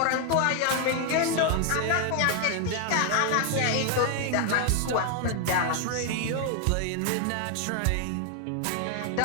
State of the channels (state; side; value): different; both; correlation 0.00